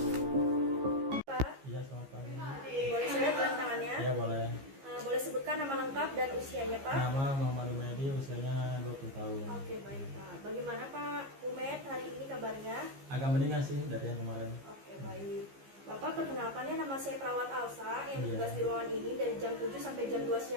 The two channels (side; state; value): left; late; 15 ms